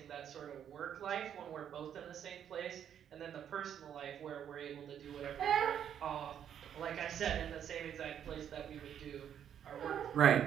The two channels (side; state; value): left; quieter; 9.2 dB